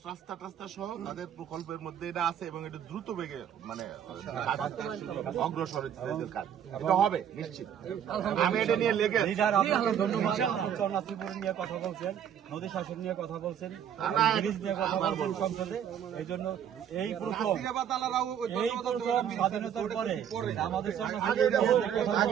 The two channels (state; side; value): quieter; left; 9.2 dB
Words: রাস্তা টাস্তা সহ তাদের প্রকল্পের মধ্যে এটা আছে, এবং এটা দ্রুত বেগে অগ্রসর হচ্ছে কাজ, এটা হবে নিশ্চিত। আমি এটা নিয়ে লেগে ত্রিপুরা নিয়ে কথা বলছেন, নদী শাসন নিয়ে কথা বলছেন, নিয়ে কথা বলছেন সংসদে। এই জন্য এই প্রথম স্বাধীনতার পরে আমাদের